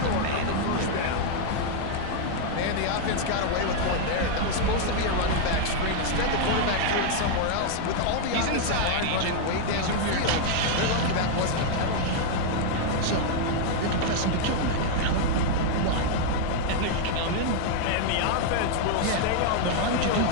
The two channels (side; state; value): both; different; correlation 0.00